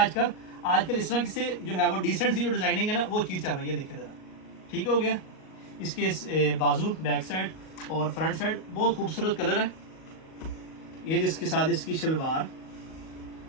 आजकल इस तरह से जो है वो डिसेंट सी जो डिज़ाइनिंग है ना वो चीज़ चल रही है। देखिए ज़रा, ठीक हो गया। इसके बाजू, बैक साइड और फ्रंट साइड बहुत खूबसूरत कलर है। ये जिसके साथ इसकी शलवार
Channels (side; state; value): right; late; 38 ms